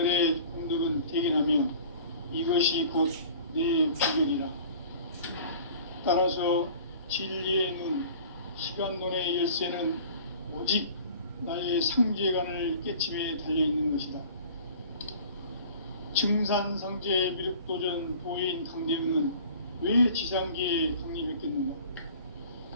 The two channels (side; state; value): both; inverted; correlation -0.45